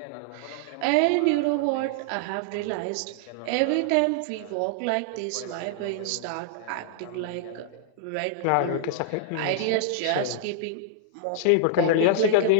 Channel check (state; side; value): different; both; correlation -0.01